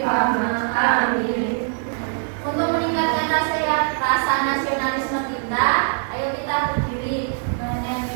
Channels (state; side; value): silent; left; 64 dB below the other